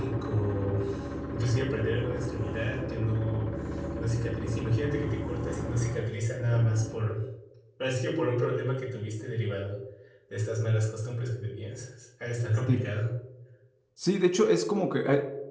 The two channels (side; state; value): both; identical; correlation 1.00